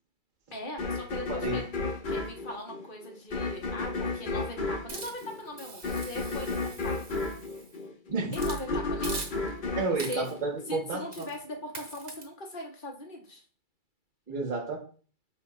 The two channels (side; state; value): right; late; 2.3 ms